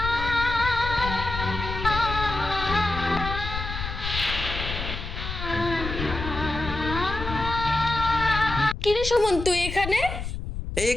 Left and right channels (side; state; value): left; noise; rumble, 6 dB below the sound